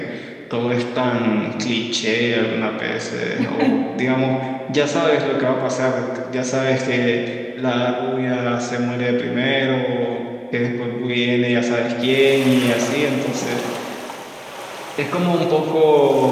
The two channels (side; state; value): both; identical; correlation 1.00